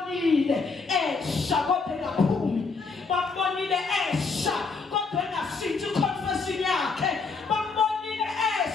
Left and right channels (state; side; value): quieter; right; 4.5 dB